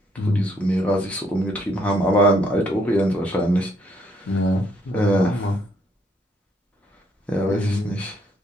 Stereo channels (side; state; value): both; normal; correlation 0.69